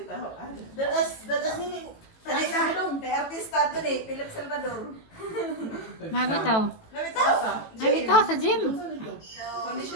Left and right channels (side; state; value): right; late; 18 ms